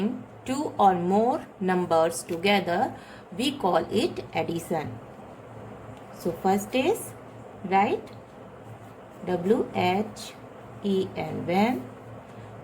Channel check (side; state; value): both; identical; correlation 1.00